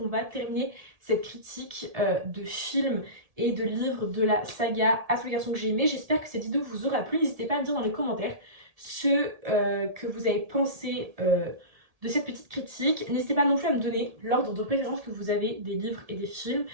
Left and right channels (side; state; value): left; late; 1.7 ms